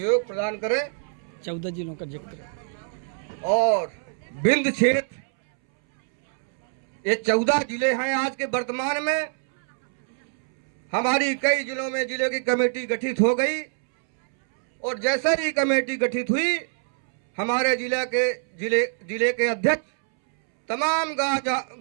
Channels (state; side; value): silent; left; 62 dB below the other